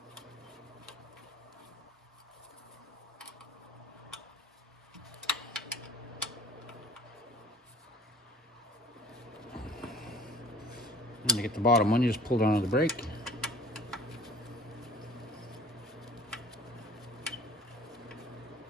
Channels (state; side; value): normal; both; correlation 0.48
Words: And to get the bottom one, you just pull down on the brake.